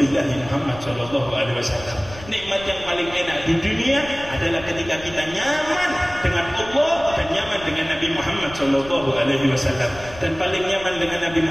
Muhammad Shallallahu Alaihi Wasallam. Nikmat yang paling enak di dunia adalah ketika kita nyaman dengan Allah dan nyaman dengan Nabi Muhammad Shallallahu Alaihi Wasallam. Dan paling nyaman dengan Nabi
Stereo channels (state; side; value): noise; left; rumble, 17 dB below the sound